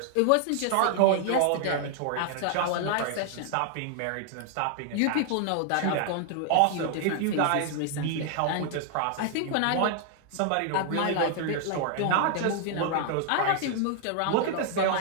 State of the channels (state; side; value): different; both; correlation 0.00